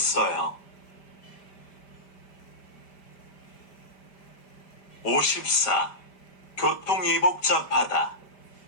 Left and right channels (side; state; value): right; late; 5.1 ms